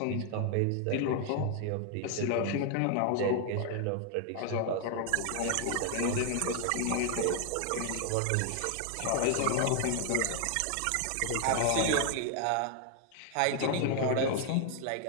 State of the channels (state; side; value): different; both; correlation 0.00